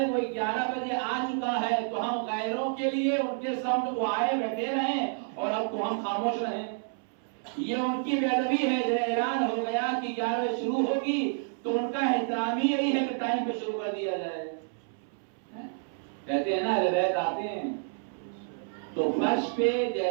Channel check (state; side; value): silent; left; 58 dB below the other